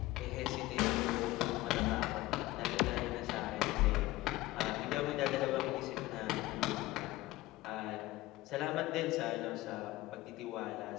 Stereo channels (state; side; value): quieter; right; 18.0 dB